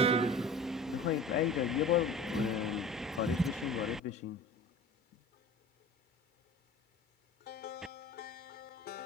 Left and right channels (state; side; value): normal; both; correlation 0.41